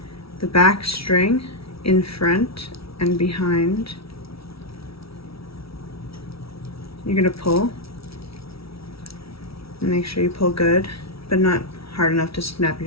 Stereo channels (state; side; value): late; right; 0.76 ms